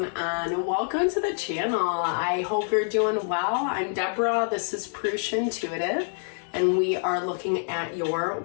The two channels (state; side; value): silent; right; 61 dB below the other